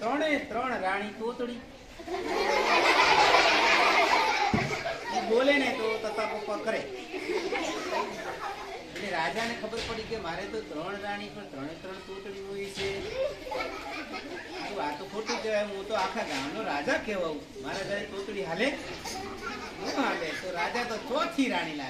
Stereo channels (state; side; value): identical; both; correlation 1.00